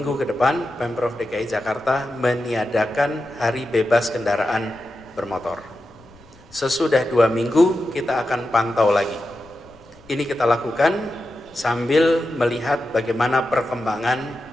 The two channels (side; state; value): left; noise; rumble, 26 dB below the sound